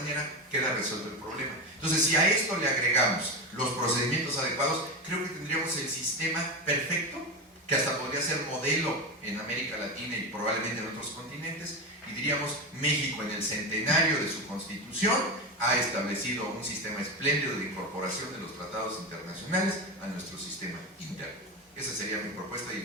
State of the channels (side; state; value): both; normal; correlation 0.18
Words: queda resuelto el problema. Entonces, si a esto le agregamos los procedimientos adecuados, creo que tendríamos el sistema perfecto, que hasta podría ser modelo en América Latina y probablemente en otros continentes, y diríamos, México en el centenario de su Constitución ha establecido un sistema espléndido de incorporación de los tratados internacionales a nuestro sistema interno. Esa sería mi propuesta y